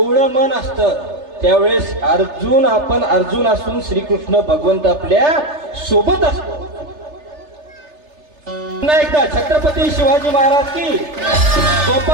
मन असतं त्यावेळेस आपण अर्जुन असून श्रीकृष्ण भगवंत आपल्या सोबत असतो. पुन्हा एकदा छत्रपती शिवाजी महाराज की,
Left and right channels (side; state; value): left; late; 3.3 ms